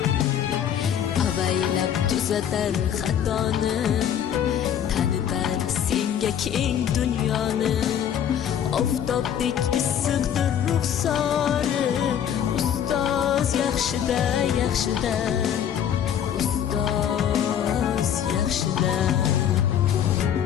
Avaylab tuzatar xatoni, tanitar senga keng dunyoni. Oftobdek issiqdir ruxsori. Ustoz yaxshida, yaxshida. Ustoz yaxshida.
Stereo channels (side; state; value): right; quieter; 9.4 dB